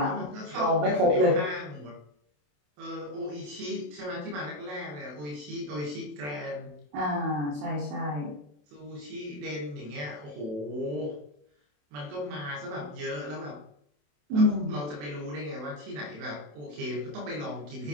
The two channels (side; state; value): left; late; 27 ms